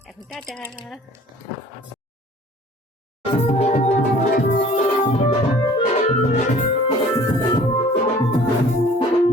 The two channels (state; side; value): normal; both; correlation 0.50